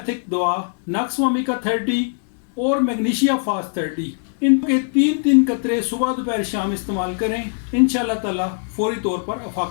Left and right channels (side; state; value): right; silent; digital silence